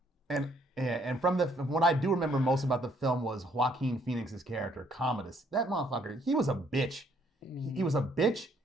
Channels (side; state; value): both; normal; correlation 0.66